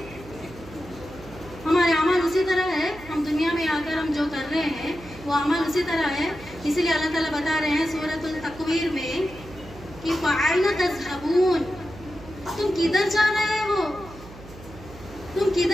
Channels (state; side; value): noise; right; hum, 17 dB below the sound